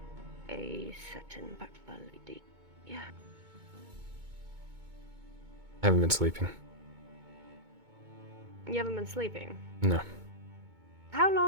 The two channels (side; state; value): left; late; 2.2 ms